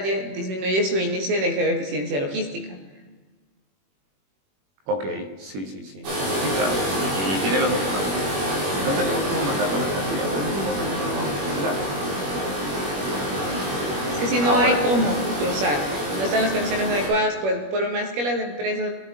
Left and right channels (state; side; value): late; left; 21 ms